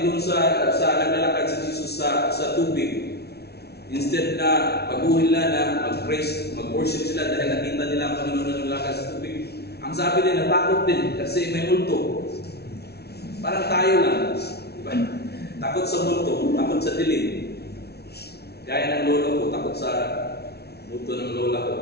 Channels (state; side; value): late; right; 0.47 ms